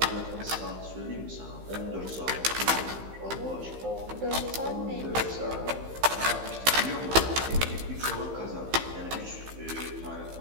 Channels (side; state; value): left; late; 15 ms